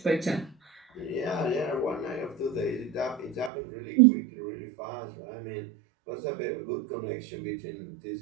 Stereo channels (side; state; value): left; drops out; at 3.5 s